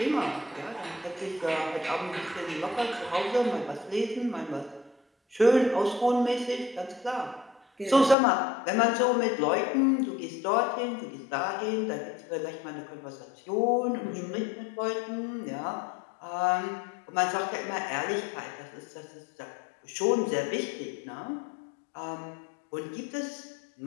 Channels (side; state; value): right; drops out; at 8.2 s